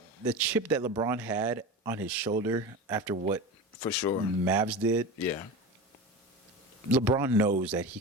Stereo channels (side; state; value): both; normal; correlation 0.28